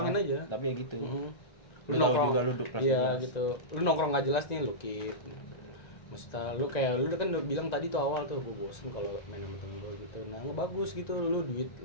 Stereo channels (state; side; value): late; right; 1.9 ms